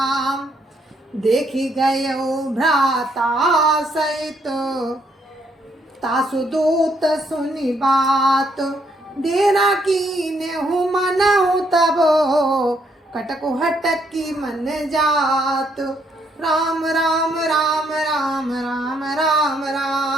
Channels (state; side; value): normal; both; correlation 0.72